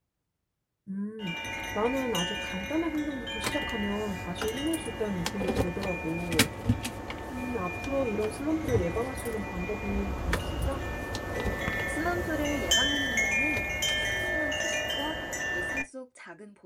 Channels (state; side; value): identical; both; correlation 1.00